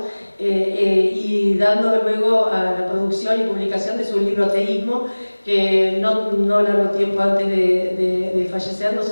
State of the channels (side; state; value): both; inverted; correlation -1.00